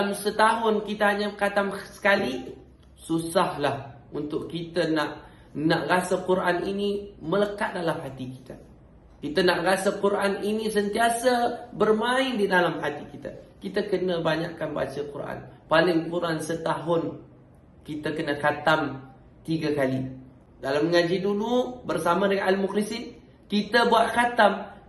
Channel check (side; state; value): both; identical; correlation 1.00